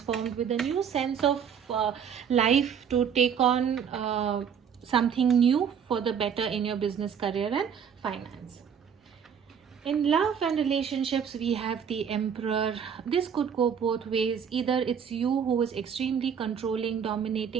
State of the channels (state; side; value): quieter; left; 7.5 dB